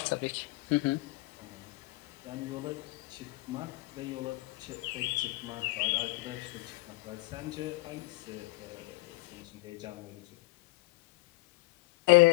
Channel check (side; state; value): right; quieter; 23.0 dB